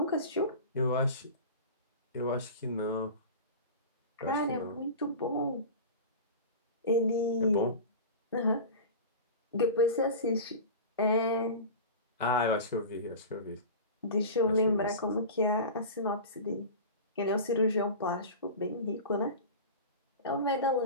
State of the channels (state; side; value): inverted; both; correlation -0.31